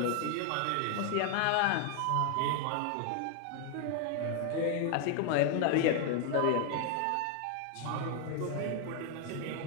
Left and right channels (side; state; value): both; different; correlation 0.00